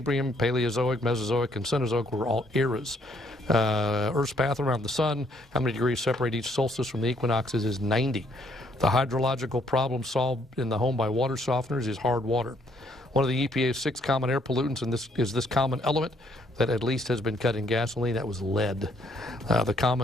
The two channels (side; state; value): both; normal; correlation 0.67